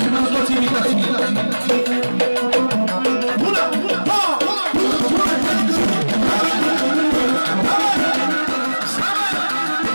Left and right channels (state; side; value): inverted; both; correlation -1.00